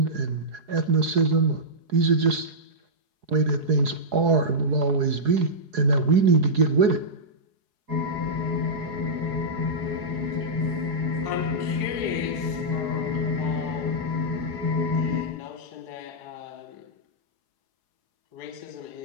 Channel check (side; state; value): left; late; 4.8 ms